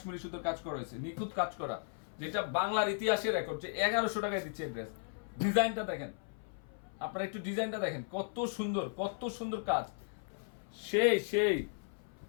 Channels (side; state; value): right; silent; 54 dB below the other